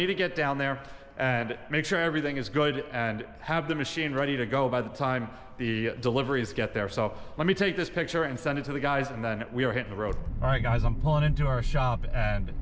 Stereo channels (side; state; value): both; identical; correlation 1.00